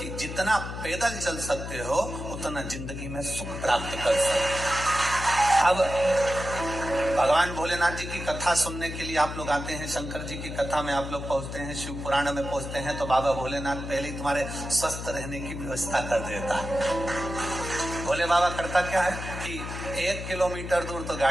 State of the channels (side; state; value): left; noise; hum, 7 dB below the sound